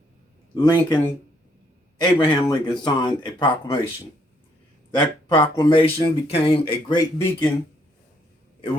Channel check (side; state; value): both; normal; correlation 0.70